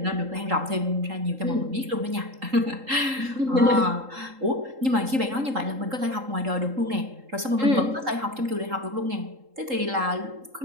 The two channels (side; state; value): left; late; 3.8 ms